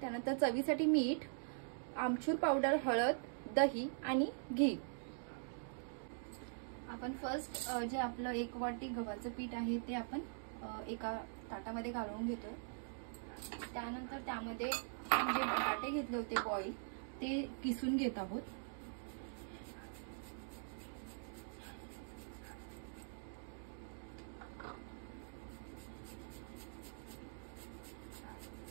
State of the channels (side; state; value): left; silent; digital silence